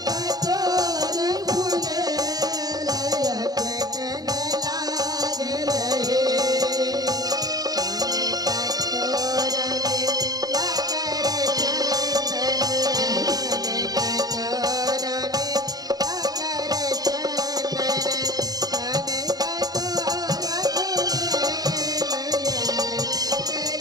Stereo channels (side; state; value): left; late; 0.19 ms